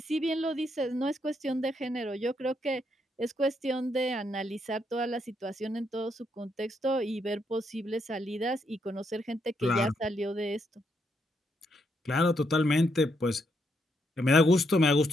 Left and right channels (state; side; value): normal; both; correlation 0.77